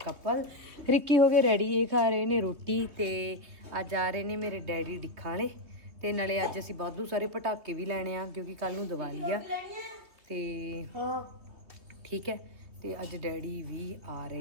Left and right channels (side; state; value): left; late; 3.3 ms